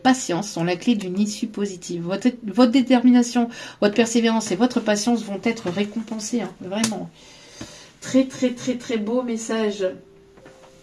sont la clé d'une issue positive. Votre détermination, votre persévérance et votre patience vont être récompensées, hein, vraiment. Très, très, très, très beau message.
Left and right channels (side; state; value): both; identical; correlation 1.00